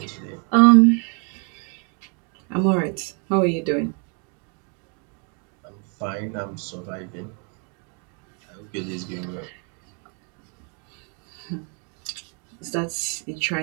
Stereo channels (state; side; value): quieter; left; 38.2 dB